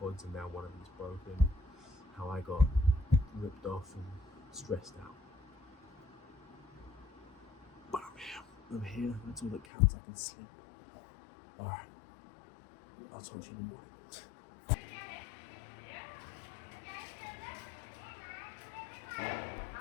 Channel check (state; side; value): drops out; right; at 9.7 s